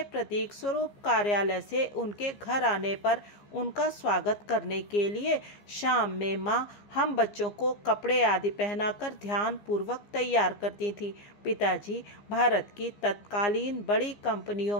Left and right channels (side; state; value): right; late; 15 ms